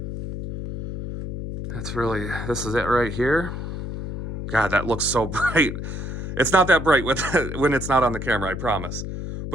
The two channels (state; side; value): noise; left; hum, 6 dB below the sound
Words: This is it right here. God, that looks so bright. It's not that bright when it's not on the camera, I promise.